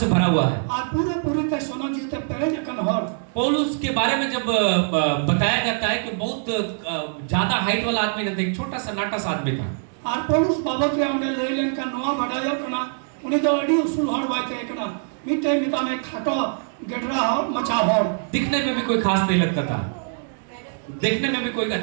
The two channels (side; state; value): left; silent; digital silence